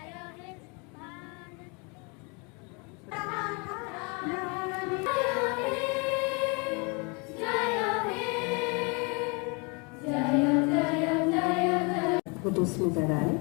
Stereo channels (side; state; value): right; quieter; 31.9 dB